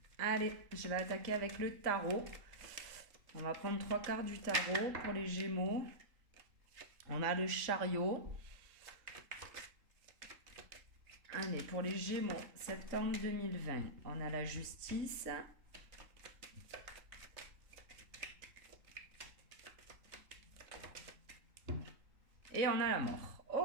Allez, je vais attaquer avec le tarot. On va prendre 3 quarts du tarot pour les Gémeaux. On a le chariot. Allez, pour les Gémeaux, septembre 2020, on a la justice. Et on a la mort.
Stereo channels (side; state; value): left; late; 3.5 ms